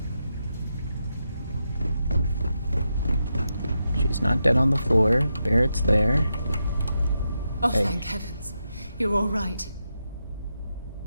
She's not dead on the floor. Barrett's there. Oh, Hey. thank heavens. You're all right.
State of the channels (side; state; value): both; inverted; correlation -0.86